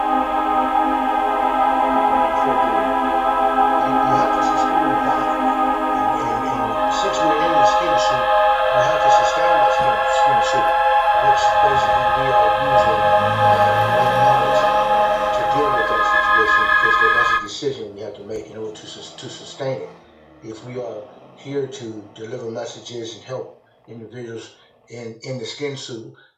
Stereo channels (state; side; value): identical; both; correlation 1.00